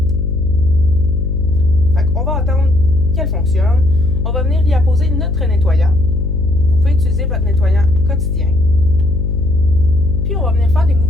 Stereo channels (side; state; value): left; noise; hum, 2 dB below the sound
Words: Fait qu'on va attendre qu'elle fonctionne. On va venir y apposer notre nettoyant. Vous pouvez utiliser votre nettoyant quotidien. Puis on va venir faire des